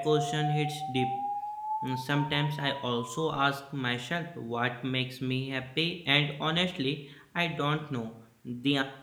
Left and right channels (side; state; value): both; identical; correlation 1.00